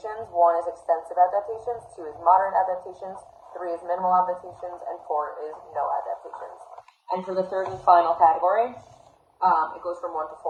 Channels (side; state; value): both; identical; correlation 1.00